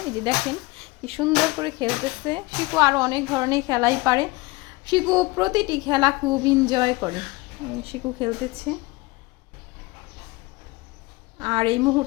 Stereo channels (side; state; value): right; quieter; 22.7 dB